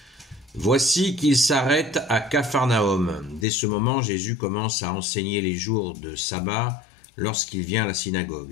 Voici qu'il s'arrête à Capharnaüm. Dès ce moment, Jésus commence à enseigner les jours de sabbat lorsqu'il vient à la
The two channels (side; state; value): right; drops out; at 3.5 s